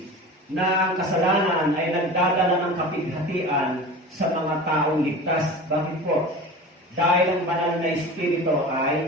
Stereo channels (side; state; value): both; normal; correlation 0.34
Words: na ang kasalanan ay nagdadala ng kapighatian sa mga taong ligtas. Bakit po? Dahil ang banal na Espiritu